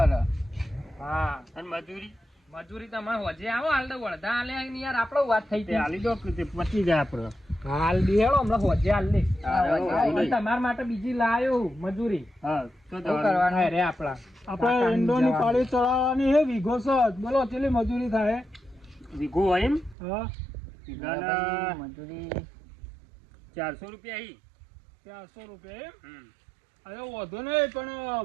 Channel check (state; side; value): drops out; left; at 20.0 s